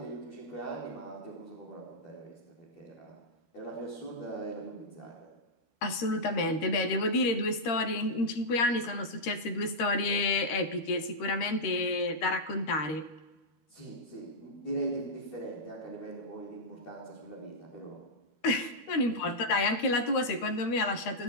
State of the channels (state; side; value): late; right; 12 ms